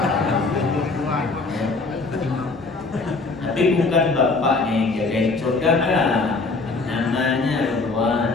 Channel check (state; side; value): quieter; right; 3.8 dB